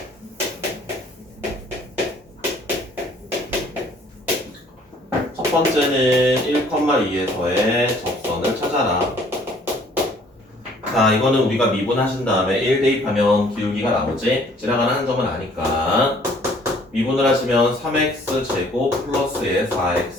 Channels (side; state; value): both; normal; correlation 0.58